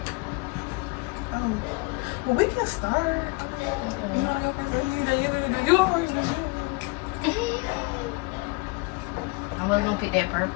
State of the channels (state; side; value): quieter; right; 27.5 dB